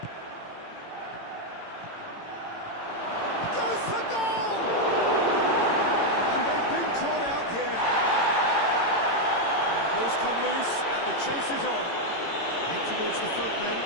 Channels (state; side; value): late; right; 18 ms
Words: Goes for goal! And they've been caught out here. And the ball's come loose. The chase is on. In towards the front then.